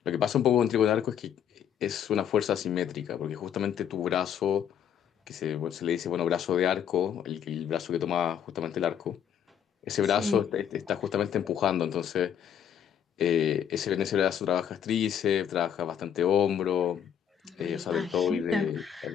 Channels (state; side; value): quieter; right; 9.0 dB